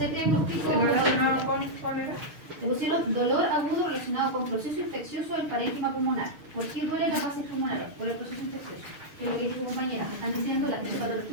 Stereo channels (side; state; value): left; late; 6.7 ms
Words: diagnóstico. ¿el relacionado con cuál era? Le pusieron dolor agudo relacionado con proceso infeccioso del parénquima pulmonar. ¿Por qué duele las bases pulmonares? Por el proceso infeccioso. Que es lo que dice su compañera. Me están diciendo la